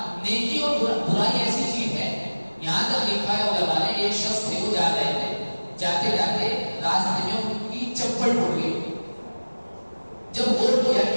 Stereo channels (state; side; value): inverted; both; correlation -1.00